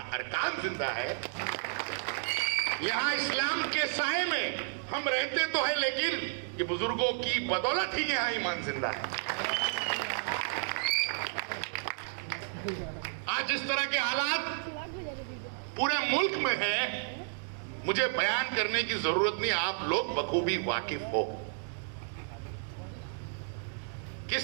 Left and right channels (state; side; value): silent; left; digital silence